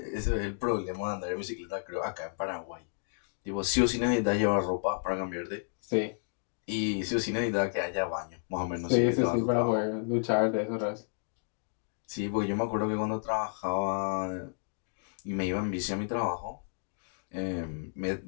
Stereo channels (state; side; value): silent; right; digital silence